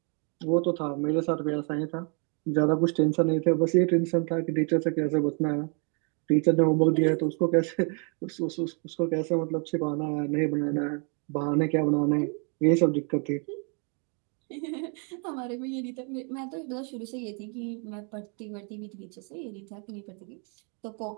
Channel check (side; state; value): left; quieter; 37.5 dB